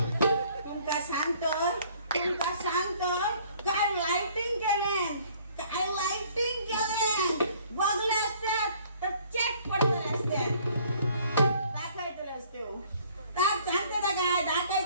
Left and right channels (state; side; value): inverted; both; correlation -0.58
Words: तुमका सांगतो काय लाइटिंग केले, काय लाइटिंग केले. बघले असतात तर चेक पडतले असतात. दाखवायतले असते हो, सांगते ना काय